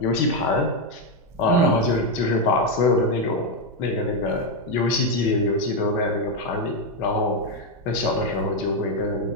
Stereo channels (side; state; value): both; normal; correlation 0.04